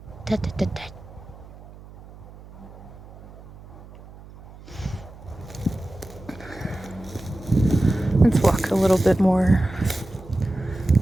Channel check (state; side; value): noise; right; hum, 19 dB below the sound